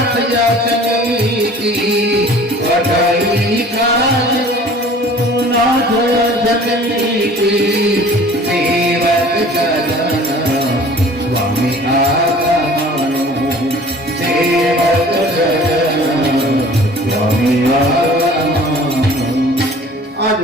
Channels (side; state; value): both; normal; correlation 0.47